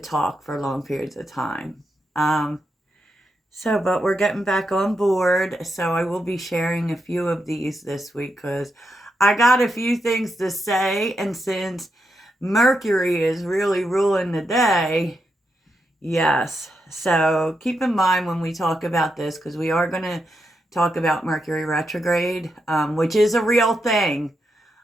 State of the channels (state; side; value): normal; both; correlation 0.84